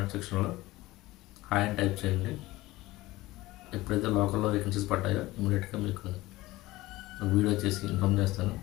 సెక్షన్లో హాయ్ అని టైప్ చేయండి. ఎప్పుడైతే లోకల్లో వేకెన్సీస్ పడ్డాయో ఇమీడియట్గా మీకు వీడియో చేసి ఇన్ఫామ్ చేస్తాను.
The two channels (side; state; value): right; quieter; 18.7 dB